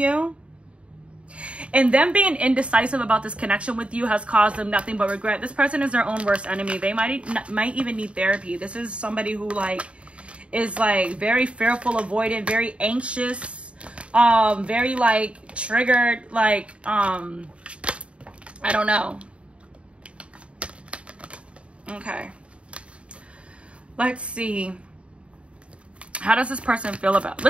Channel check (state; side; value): late; left; 0.060 ms